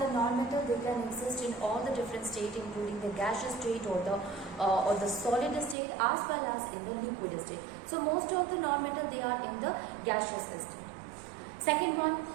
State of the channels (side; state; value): left; drops out; at 5.8 s